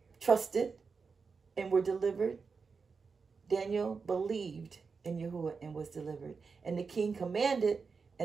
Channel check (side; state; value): left; quieter; 5.0 dB